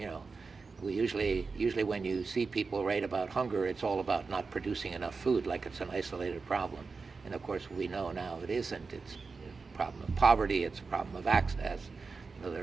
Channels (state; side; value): quieter; left; 4.5 dB